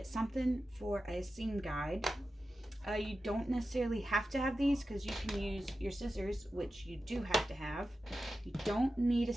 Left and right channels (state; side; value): normal; both; correlation 0.92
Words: something for a seam guide. You don't necessarily have to have these, because you can use your scissors, which you do have to have. You don't need a